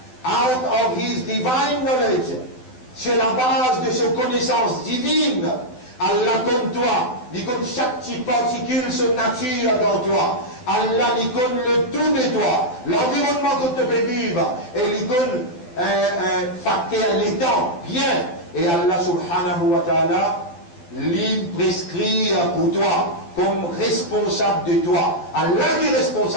of his divine knowledge, sur la base de ses connaissances divines. Allah comme toi, il connaît chaque petite particule, son nature dans toi. Allah il connaît le tout de toi, l'environnement que tu peux vivre, et il connaît facteur les temps, bien. Et Allah subhanahu wa ta'ala, il prescrit pour toi, comme responsable de toi. Allah qui est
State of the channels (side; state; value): right; late; 12 ms